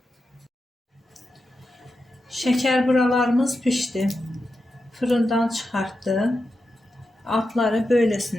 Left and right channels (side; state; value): both; normal; correlation 0.89